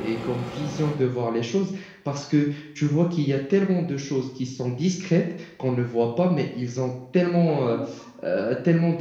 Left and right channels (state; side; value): identical; both; correlation 1.00